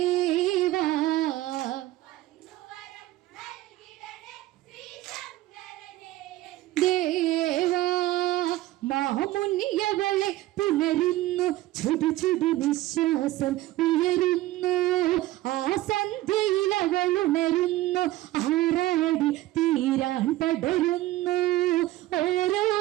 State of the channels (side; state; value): left; quieter; 16.3 dB